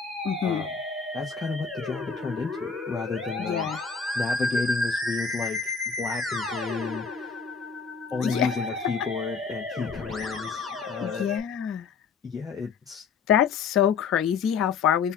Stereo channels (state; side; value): quieter; right; 5.6 dB